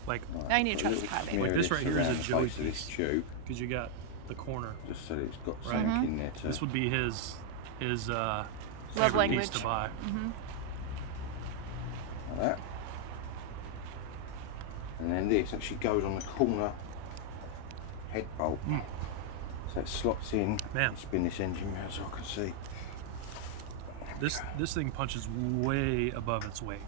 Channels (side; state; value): both; different; correlation 0.00